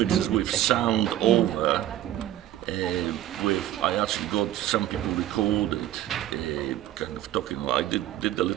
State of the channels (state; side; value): quieter; left; 13.0 dB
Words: with sound over. I actually got some people recorded, kind of talking. I did a